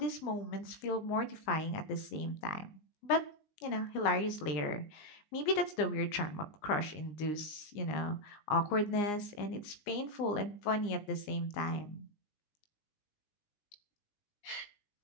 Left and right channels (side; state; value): right; late; 19 ms